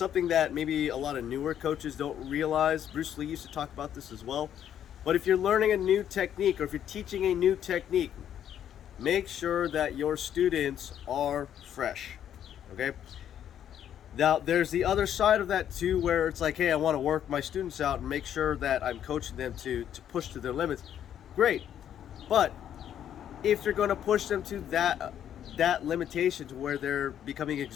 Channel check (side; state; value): right; quieter; 10.0 dB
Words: that maybe a lot of newer coaches don't realize. Bruce Lee used to talk about this as well. But if you're learning a new technique or if you're teaching a new technique, make sure that your students are fresh, okay? Now, there's the other side of that too, where it's like, hey, I want to work my students out and make sure that I'm coaching them to push to their limits. Great. But if you're going to push them to that limitation to where they're becoming